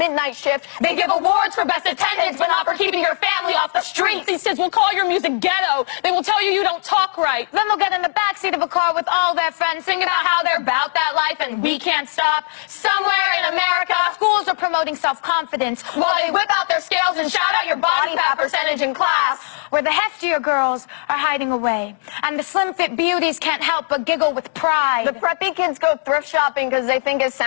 shift. They give awards for best attendance, but not for keeping your family off the streets. These kids will call your music ghetto. They will tell you don't talk right. Then they'll get in the backseat of a car with all their friends, singing about how they're about that life and we can't stop. Somewhere in America, schools are promoting self-confidence while they whip out their scales and shout out your body fat percentage in class. Where the heftier girls are hiding away, and the slim-fit beauties can't help but giggle with pride. The preppy kids go thrift shopping because they think it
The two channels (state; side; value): silent; right; 65 dB below the other